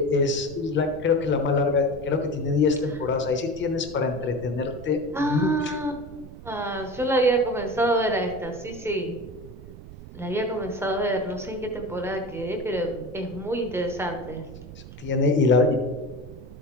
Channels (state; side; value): noise; right; rumble, 15 dB below the sound